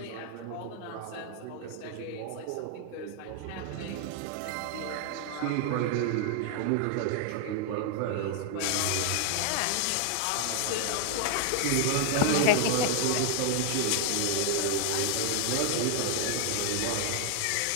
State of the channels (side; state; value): both; different; correlation 0.00